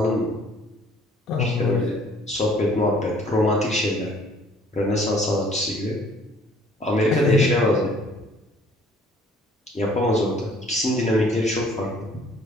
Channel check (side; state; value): both; normal; correlation 0.57